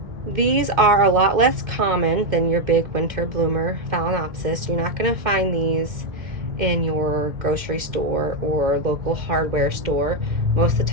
These are a lot less common than your big winter bloomer Phalaenopsis. You're not going to find these in your grocery store or local hardware store. Most of the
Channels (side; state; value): left; late; 2.1 ms